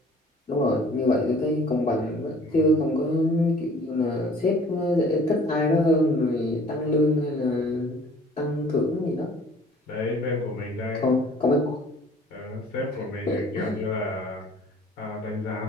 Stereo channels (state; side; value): normal; both; correlation 0.52